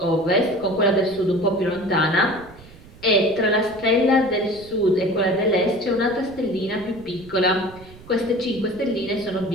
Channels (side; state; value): right; noise; rumble, 21 dB below the sound